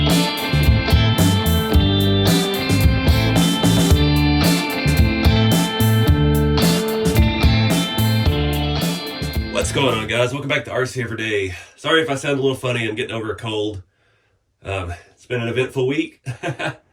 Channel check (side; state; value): both; identical; correlation 1.00